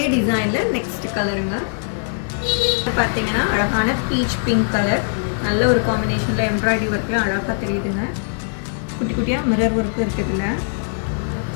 டிசைனில் நெக்ஸ்ட் கலருங்க. பார்த்தீங்கன்னா அழகான பீச் பிங்க் கலர், நல்ல ஒரு காம்பினேஷனில் எம்ப்ராய்டரி ஒர்க்கில் அழகாக தெரியுதுங்க. குட்டி குட்டியாக மிரர் ஒர்க்கு இருக்குதுல்ல.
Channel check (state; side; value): silent; right; digital silence